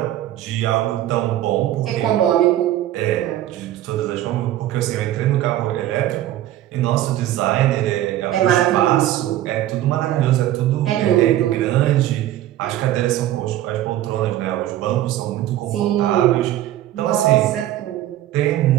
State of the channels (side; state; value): left; quieter; 13.4 dB